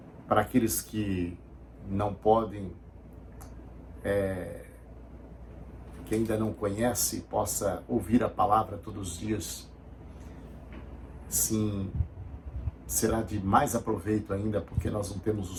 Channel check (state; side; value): identical; both; correlation 1.00